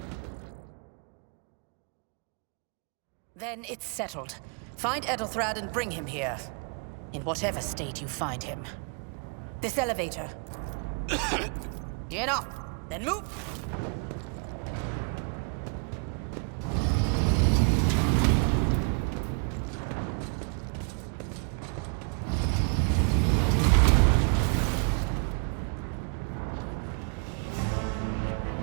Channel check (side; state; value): left; quieter; 39.0 dB